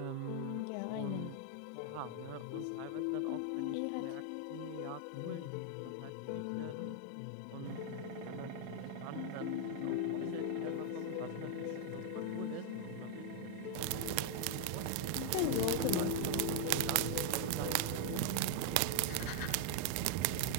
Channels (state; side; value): different; both; correlation 0.00